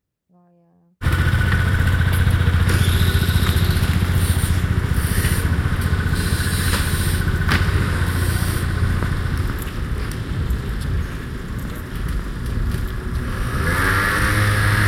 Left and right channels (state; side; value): identical; both; correlation 1.00